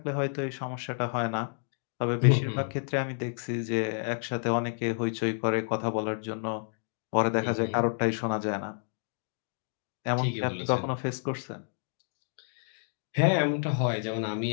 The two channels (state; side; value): silent; right; digital silence